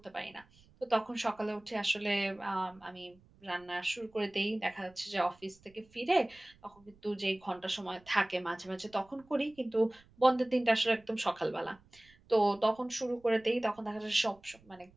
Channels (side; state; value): right; noise; rumble, 29 dB below the sound